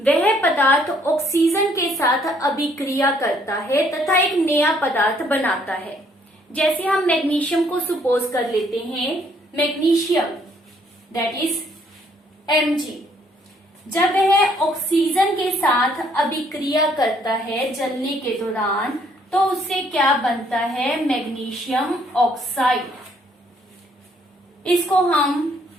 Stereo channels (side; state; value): both; normal; correlation 0.66